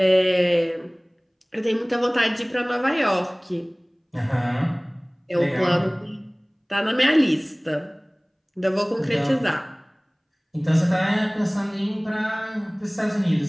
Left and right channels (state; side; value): identical; both; correlation 1.00